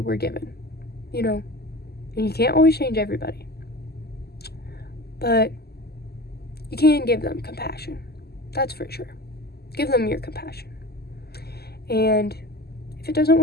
given, you know, and you can't always change everybody, but you can give them compassion. That's for sure. Give them your compassion. And if it doesn't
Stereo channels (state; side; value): late; right; 0.46 ms